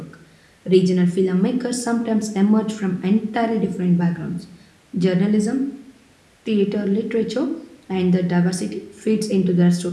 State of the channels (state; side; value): identical; both; correlation 1.00